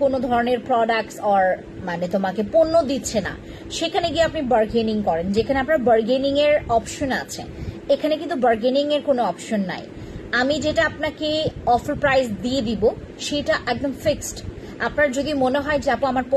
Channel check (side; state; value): both; identical; correlation 1.00